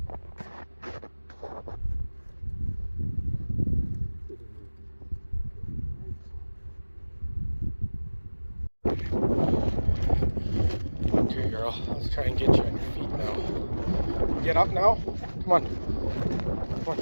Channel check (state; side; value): inverted; both; correlation -1.00